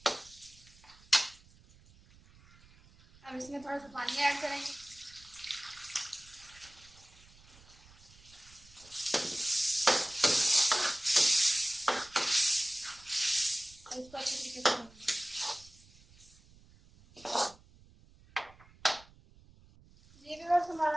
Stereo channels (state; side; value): noise; right; rumble, 25 dB below the sound